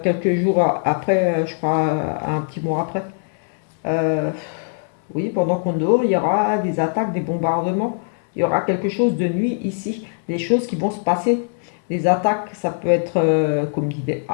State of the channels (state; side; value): silent; right; digital silence